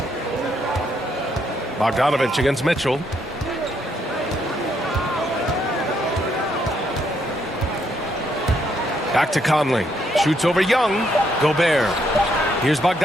Bogdanovich against Mitchell. Back to Conley. Shoots over Young. Gobert. Here's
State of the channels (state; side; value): normal; both; correlation 0.74